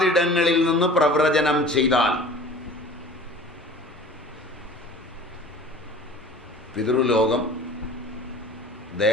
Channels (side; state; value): both; normal; correlation 0.43